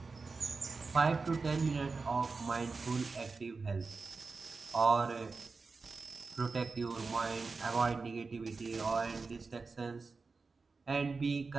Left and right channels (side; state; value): left; quieter; 4.3 dB